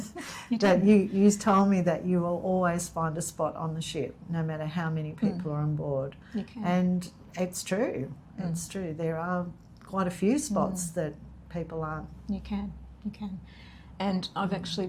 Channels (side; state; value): both; identical; correlation 1.00